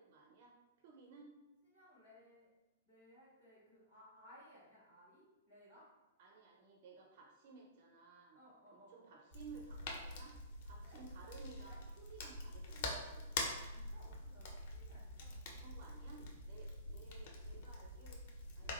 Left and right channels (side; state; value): both; inverted; correlation -0.40